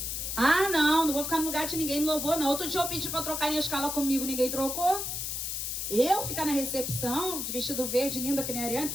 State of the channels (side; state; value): left; noise; hiss, 3 dB below the sound